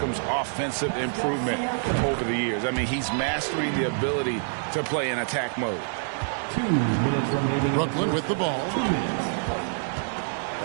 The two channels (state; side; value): silent; left; digital silence